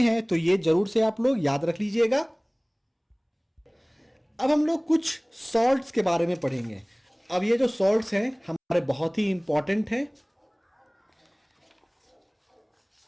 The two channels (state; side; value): identical; both; correlation 1.00